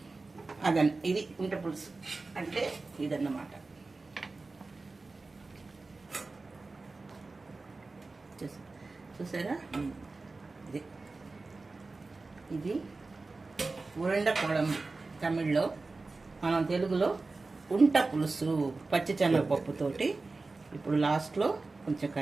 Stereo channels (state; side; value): quieter; left; 3.6 dB